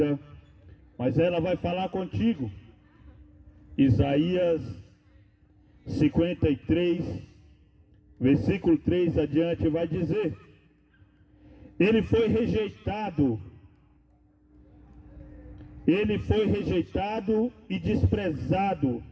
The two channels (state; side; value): identical; both; correlation 1.00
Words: mas ela vai falar contigo. Isaías 53, versículo 3 adiante vai dizer: Ele foi rejeitado e desprezado